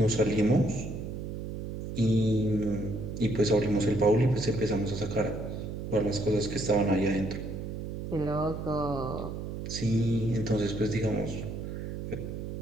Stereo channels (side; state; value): right; noise; hum, 6 dB below the sound